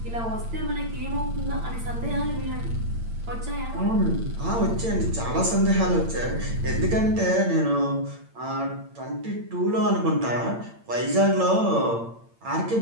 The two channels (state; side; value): late; left; 8.8 ms